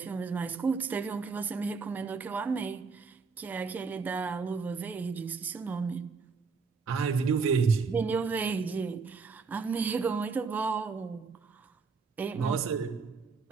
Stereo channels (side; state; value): left; quieter; 4.9 dB